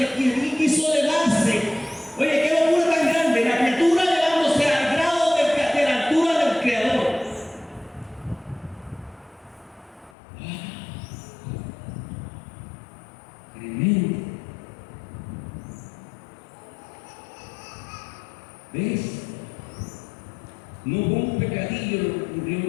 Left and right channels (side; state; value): right; drops out; at 10.2 s